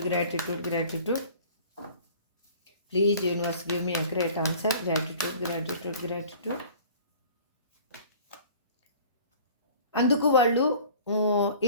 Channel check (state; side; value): inverted; both; correlation -0.47